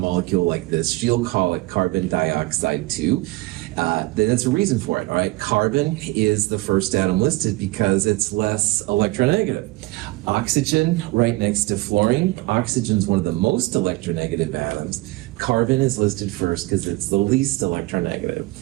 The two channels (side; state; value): left; quieter; 20.7 dB